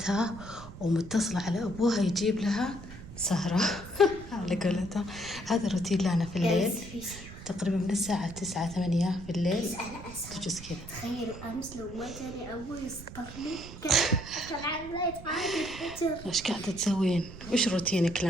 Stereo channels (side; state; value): right; noise; rumble, 14 dB below the sound